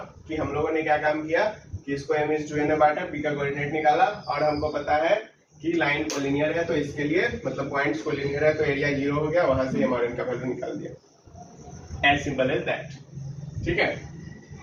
कि हम लोगों ने क्या काम किया कि इसको m/n में बांटा, p का कोऑर्डिनेट निकाला और हमको पता है कि लाइन कोलिनियर है, तो इसके लिए मतलब पॉइंट्स कोलिनियर है तो एरिया 0 हो गया, वहां से m और n का वैल्यू निकाल दिया, एज सिंपल एज दैट, ठीक है।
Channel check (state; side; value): identical; both; correlation 1.00